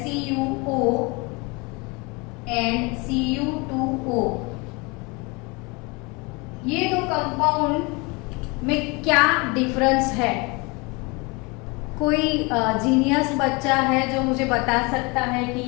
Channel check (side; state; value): right; quieter; 27.7 dB